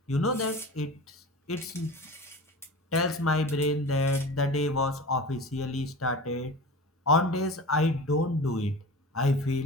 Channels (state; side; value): normal; both; correlation 0.34